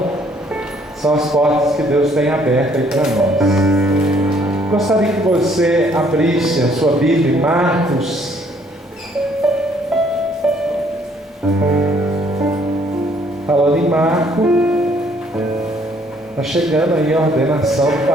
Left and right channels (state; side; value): normal; both; correlation 0.64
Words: são as portas que Deus tem abertas aí para nós. Gostaria que você abrisse a sua Bíblia em Marcos. Falando em Marco, está chegando aí a ordenação do